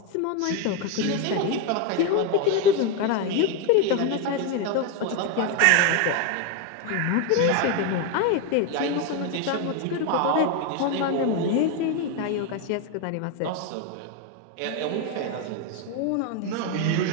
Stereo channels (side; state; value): both; different; correlation 0.02